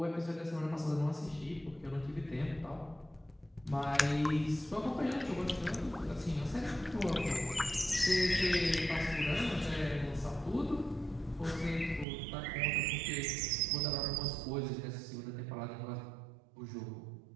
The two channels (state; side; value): drops out; left; at 12.1 s